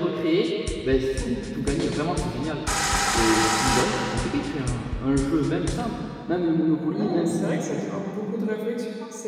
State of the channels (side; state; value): both; identical; correlation 1.00